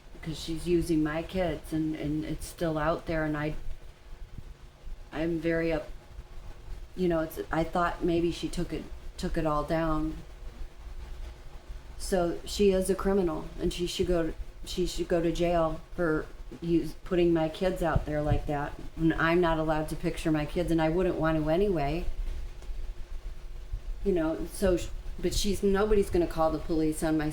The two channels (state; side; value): identical; both; correlation 1.00